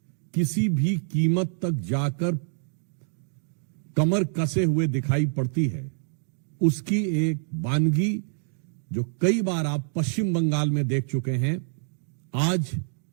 किसी भी कीमत तक जाकर कमर कसे हुए दिखाई पड़ती है, उसकी एक वानगी जो कई बार आप पश्चिम बंगाल में देख चुके हैं, आज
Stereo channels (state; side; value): silent; left; digital silence